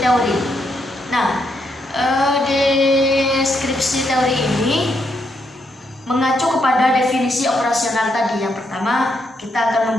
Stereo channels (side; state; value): both; normal; correlation 0.78